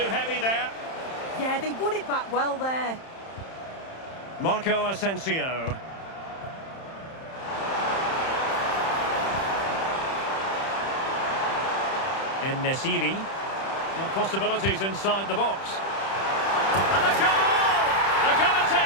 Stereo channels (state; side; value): late; right; 31 ms